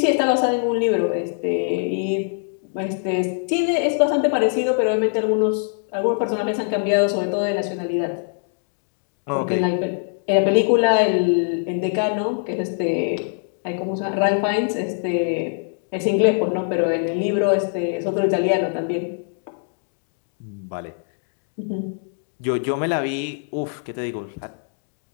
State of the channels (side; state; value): right; silent; digital silence